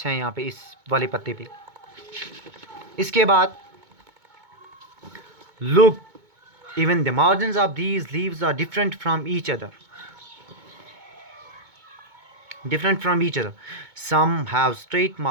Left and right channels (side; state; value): left; late; 2.2 ms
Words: हैं यहाँ पे इस वाले पत्ते पे। इसके बाद look, even the margins of these leaves are different from each other, some have straight